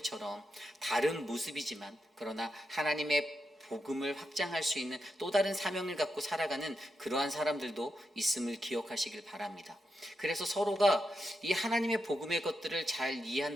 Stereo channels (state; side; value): normal; both; correlation 0.85